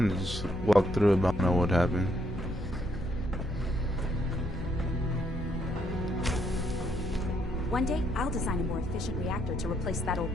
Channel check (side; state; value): both; normal; correlation 0.73